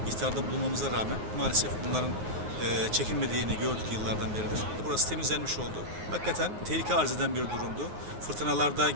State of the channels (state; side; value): late; left; 9.6 ms